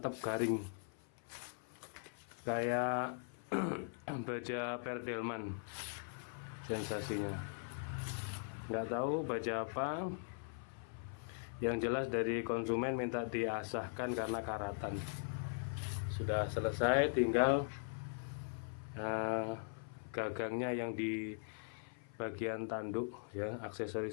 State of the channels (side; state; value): right; silent; 51 dB below the other